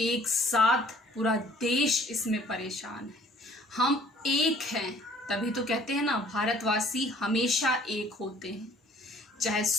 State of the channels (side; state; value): both; normal; correlation 0.56